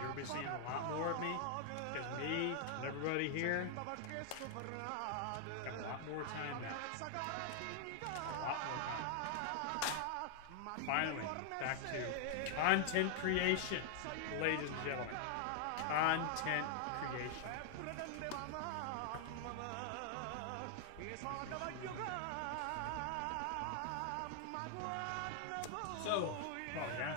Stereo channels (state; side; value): different; both; correlation 0.00